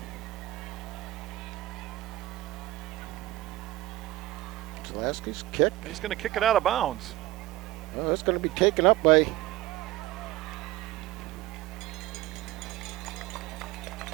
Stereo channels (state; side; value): quieter; left; 16.9 dB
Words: Zalaski's kick. He's going to kick it out of bounds. Oh, it's going to be taken up by